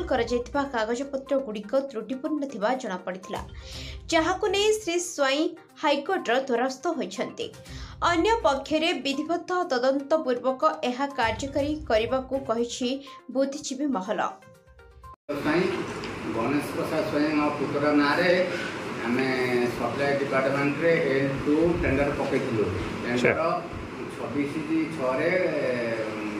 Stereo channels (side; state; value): both; identical; correlation 1.00